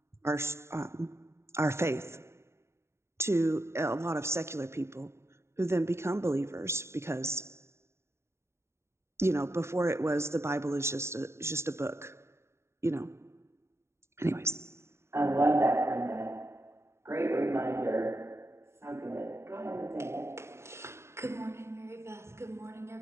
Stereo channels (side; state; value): left; late; 0.13 ms